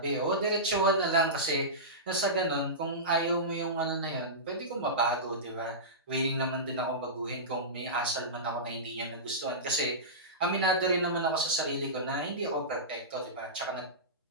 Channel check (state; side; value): normal; both; correlation -0.18